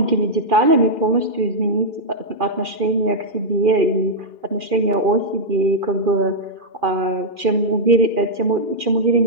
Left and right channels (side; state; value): left; late; 2.4 ms